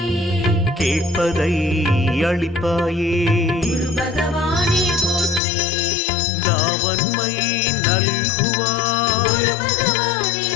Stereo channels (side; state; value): right; drops out; at 5.4 s